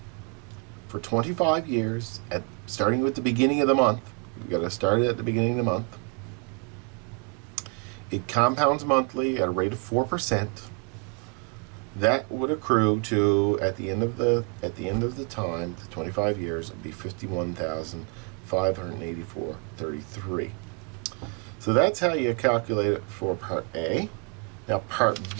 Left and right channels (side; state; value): left; quieter; 35.5 dB